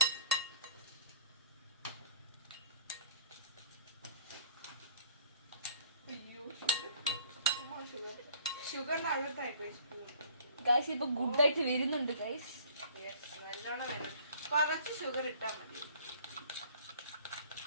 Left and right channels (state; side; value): inverted; both; correlation -0.54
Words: അയ്യോ, ഷുഗറിന്റെ അകത്തായിപ്പോയി സ്പൂൺ. ഗൈസ്, ഇപ്പൊ ഗുഡായിട്ട് വരുന്നുണ്ട് ഗൈസ്. നല്ലോണം വേണം. കുറച്ച് ഷുഗർ ഇട്ടാ മതി.